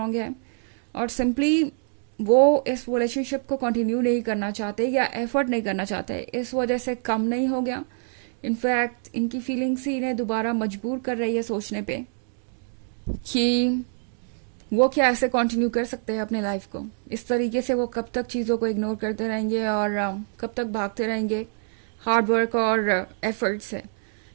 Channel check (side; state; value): left; silent; digital silence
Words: है, और सिंपली वो इस रिलेशनशिप को कंटिन्यू नहीं करना चाहते या एफर्ट नहीं करना चाहते, इस वजह से कम नहीं हो गया। इनफैक्ट इनकी फीलिंग्स ही इन्हें दोबारा मजबूर कर रही है सोचने पे कि वो क्या ऐसे कंटिन्यू कर सकते हैं अपने लाइफ को। इस तरीके से वो कब तक चीज़ों को इग्नोर करते रहेंगे और कब तक भागते रहेंगे हार्ड वर्क और एफर्ट से